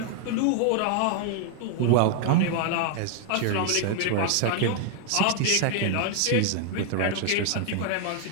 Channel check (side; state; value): both; different; correlation 0.00